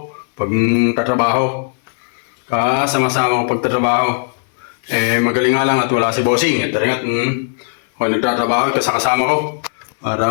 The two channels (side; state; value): right; silent; 68 dB below the other